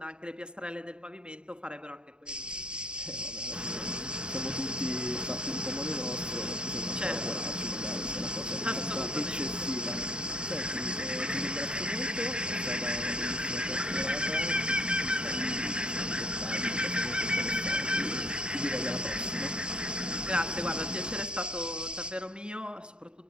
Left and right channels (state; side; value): late; left; 0.050 ms